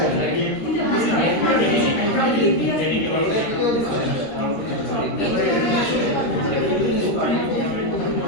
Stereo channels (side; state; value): right; late; 13 ms